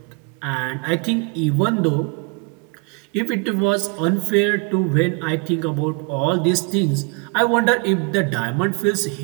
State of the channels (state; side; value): quieter; left; 33.8 dB